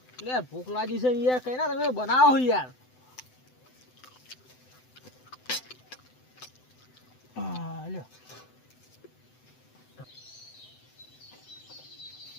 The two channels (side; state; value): right; late; 7.9 ms